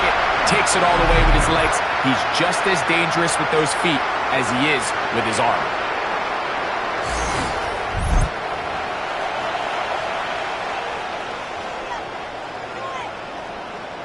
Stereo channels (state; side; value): identical; both; correlation 1.00